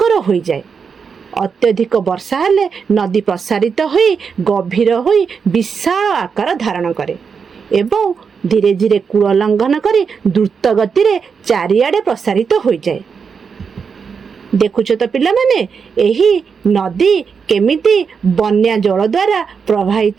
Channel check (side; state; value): left; quieter; 6.0 dB